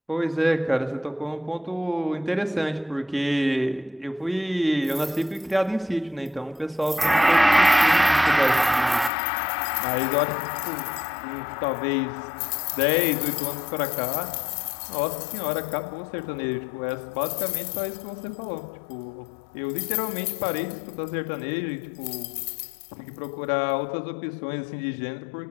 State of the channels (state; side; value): drops out; right; at 9.1 s